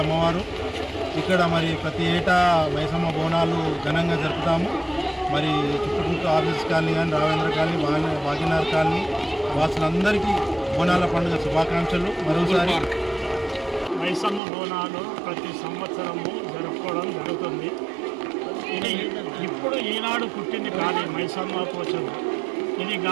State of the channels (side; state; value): left; drops out; at 14.4 s